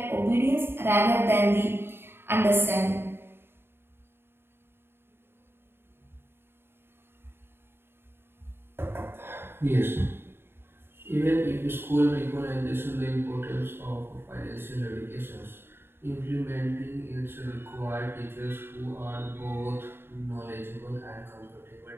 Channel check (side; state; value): left; late; 0.11 ms